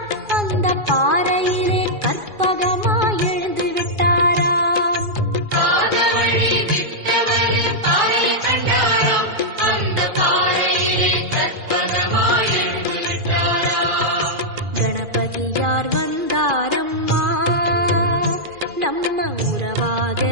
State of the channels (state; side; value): late; left; 2.4 ms